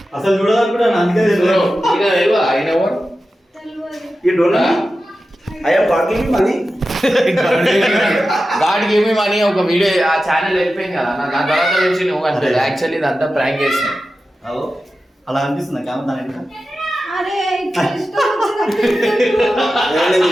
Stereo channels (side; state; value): both; normal; correlation 0.93